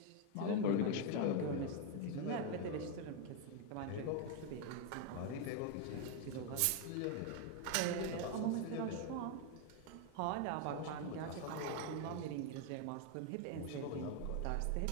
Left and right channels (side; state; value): both; different; correlation 0.01